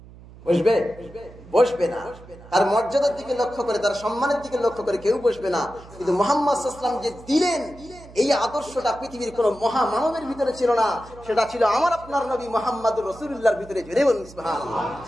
বসবে? বসবে না। তার মর্যাদার দিকে লক্ষ্য করে, তার সম্মানের দিকে লক্ষ্য করে কেউ বসবে না। কিন্তু মুহাম্মদ সাল্লাল্লাহু আলাইহি ওয়াসাল্লাম যে দিলেন, এই আদর্শটা পৃথিবীর কোন মহামানবের ভিতরে ছিল না, সেটা ছিল আমার আপনার নবী মুহাম্মদুর রাসূলুল্লাহর ভিতরে। জোরে বলুন সুবহানাল্লাহ।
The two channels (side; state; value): right; noise; hum, 20 dB below the sound